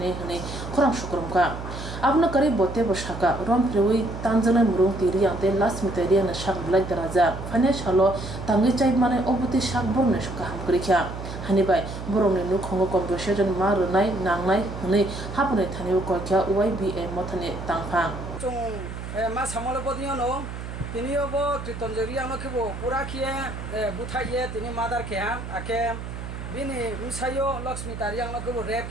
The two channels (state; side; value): noise; right; hum, 8 dB below the sound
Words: Hane Korang Shukrumka Abna Kari Bote Boshaka Rom Prewi Tanzana Murung Tiriang Te Last Miteria na Shak Black Daraja Panya Shalo Tangi Chai Mane Obuti Shak Borne Shuka Hamkrikya Hanibai Boromni Nukongo Conversation Marunai Nangnai Hune Hapune Tani Kokya YBA Motane Tangpang Chung ma samolo bodino no tinio bo tritonjeria no khibo pura khie buthaiye tini madar khe ake bini musayo lakshmi tariang no khibo rep